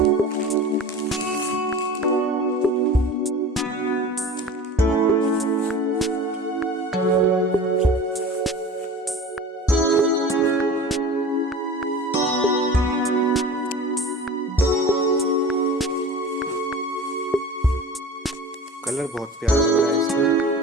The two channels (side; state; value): both; normal; correlation 0.37